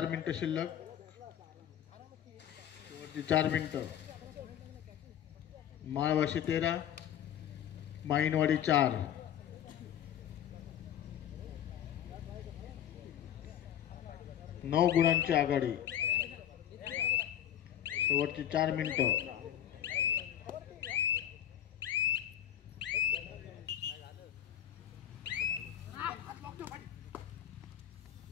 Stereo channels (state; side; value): quieter; right; 10.5 dB